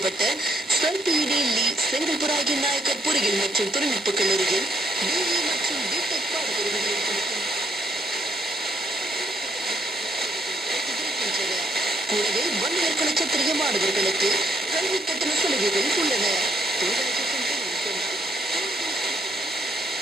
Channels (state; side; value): normal; both; correlation 0.69